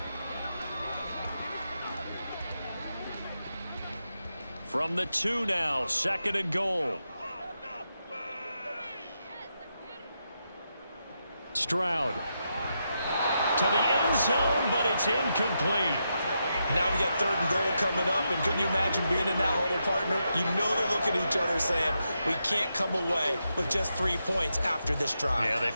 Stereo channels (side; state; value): both; inverted; correlation -0.84